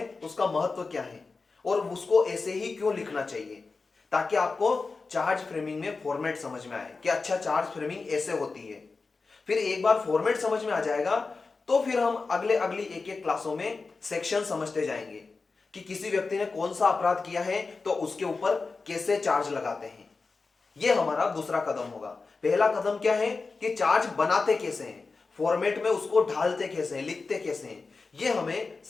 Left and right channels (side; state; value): right; quieter; 4.2 dB